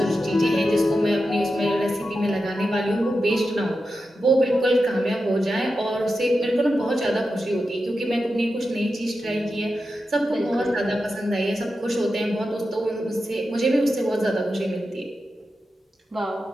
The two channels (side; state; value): both; normal; correlation 0.90